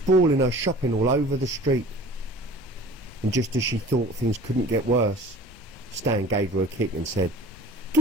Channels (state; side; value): normal; both; correlation 0.45